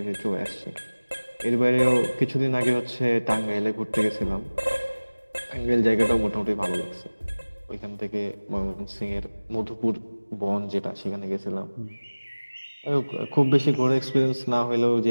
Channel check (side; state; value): both; inverted; correlation -1.00